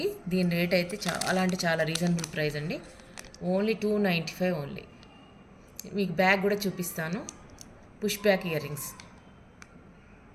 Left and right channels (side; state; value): both; identical; correlation 1.00